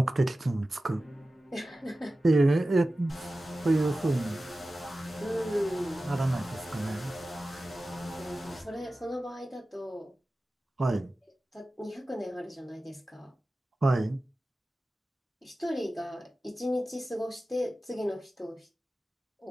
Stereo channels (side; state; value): both; normal; correlation 0.95